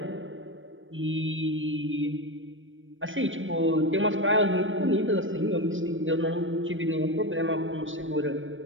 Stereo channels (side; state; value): left; late; 0.57 ms